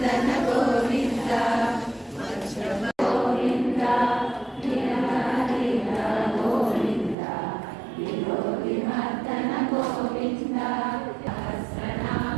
गोविन्द गोविन्द नीलहरिद गोविन्द विलोकिमर्दन गोविन्द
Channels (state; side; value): drops out; left; at 7.2 s